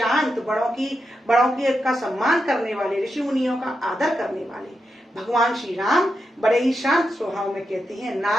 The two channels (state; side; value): normal; both; correlation 0.86